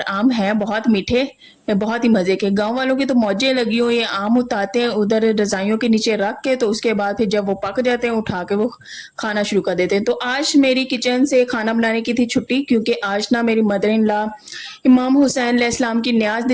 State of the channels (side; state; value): both; identical; correlation 1.00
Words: आम है बहुत मीठे, बहुत ही मजे के। गांव वालों की तो मौजें लगी हुई है। आम उतारते हैं उधर रजाइयों के नीचे रख के, तो उसके बाद फिर जब वो पक जाते हैं उठा के वो खाना शुरू कर देते हैं। तो आज मेरी किचन से खाना बनाने की थी छुट्टी, क्योंकि आज ना मेरी मदर इन लॉ इमाम हुसैन अलैहिस्सलाम की न्याज